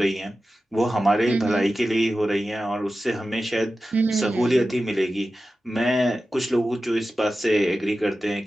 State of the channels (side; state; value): both; normal; correlation 0.94